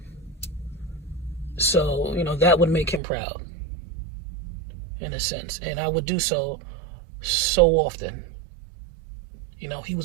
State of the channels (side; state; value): left; drops out; at 3.0 s